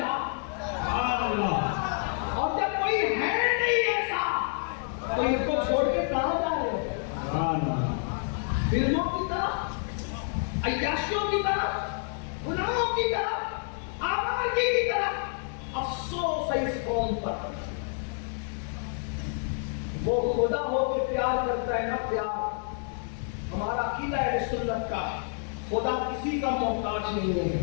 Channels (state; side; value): silent; right; 59 dB below the other